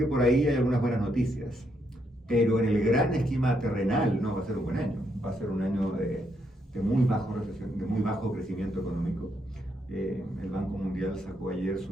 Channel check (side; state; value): both; normal; correlation 0.77